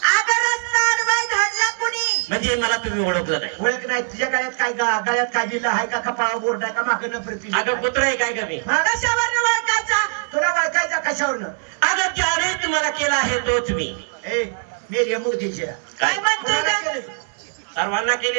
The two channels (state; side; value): silent; left; 65 dB below the other